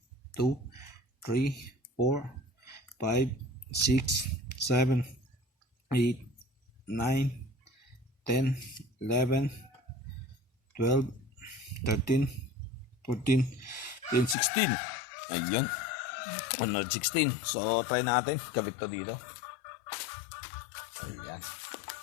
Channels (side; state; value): right; drops out; at 14.4 s